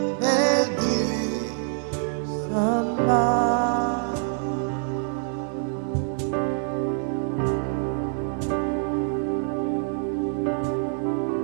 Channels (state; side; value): silent; left; 61 dB below the other